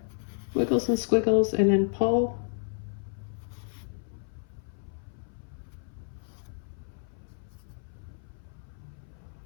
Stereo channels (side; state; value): right; silent; 56 dB below the other